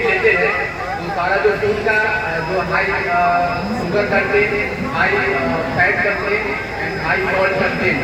है। तो सारा जो फूड का जो high sugar content, high fat content and high salt content,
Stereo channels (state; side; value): identical; both; correlation 1.00